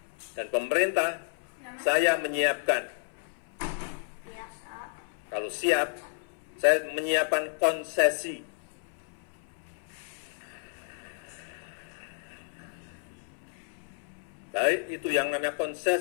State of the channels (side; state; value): right; silent; 57 dB below the other